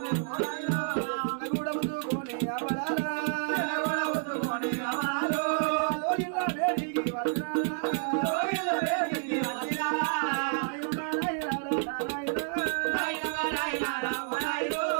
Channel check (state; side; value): silent; left; 57 dB below the other